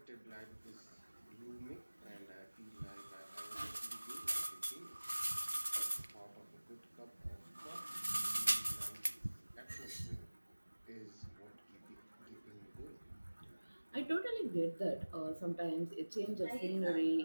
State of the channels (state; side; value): inverted; both; correlation -1.00